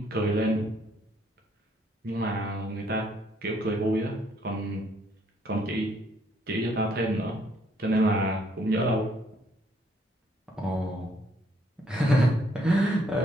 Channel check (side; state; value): both; normal; correlation 0.68